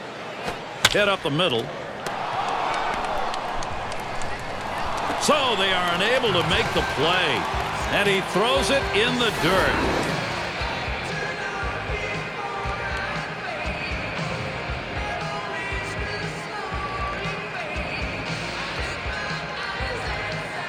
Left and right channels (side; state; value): both; identical; correlation 1.00